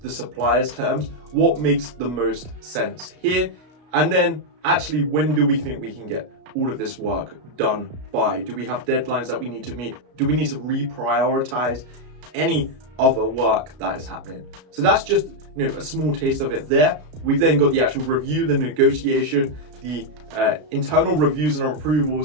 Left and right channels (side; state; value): left; late; 33 ms